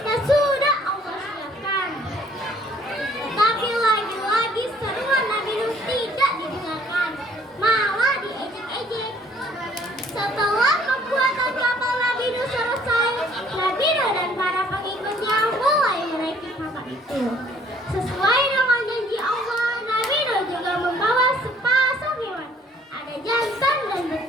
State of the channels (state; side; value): normal; both; correlation 0.60